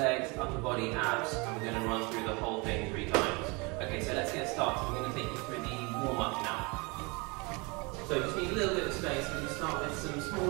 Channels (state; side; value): quieter; left; 28.5 dB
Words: upper body, abs, and we're going to run through the whole thing 3 times. Okay, so let's get started. We're going to take you through the warm up now. So you just need a little bit of space. We're going to start with some